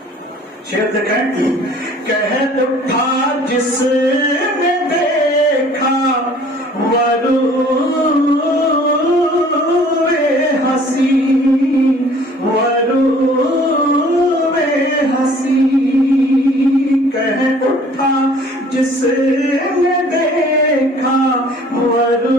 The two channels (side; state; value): both; normal; correlation 0.53